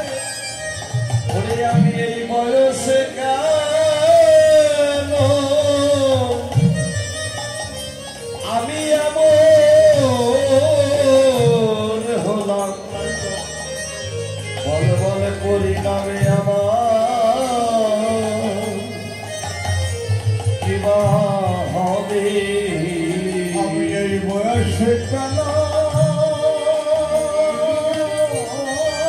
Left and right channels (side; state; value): both; identical; correlation 1.00